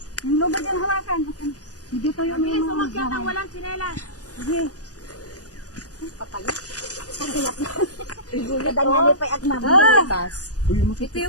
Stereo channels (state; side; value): late; right; 0.67 ms